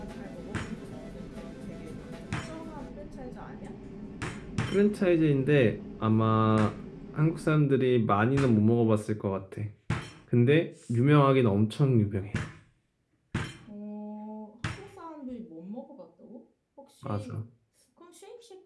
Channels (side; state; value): both; identical; correlation 1.00